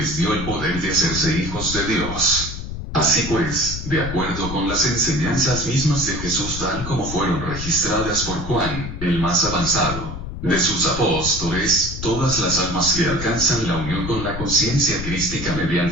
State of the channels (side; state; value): left; noise; rumble, 7 dB below the sound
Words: dio el poder de hacerse hijos de Dios. Así pues, de acuerdo con las enseñanzas mismas de Jesús tal como fueron registradas por Juan, el más avanzado de sus apóstoles, todas las almas que alcanzan la unión con la conciencia crística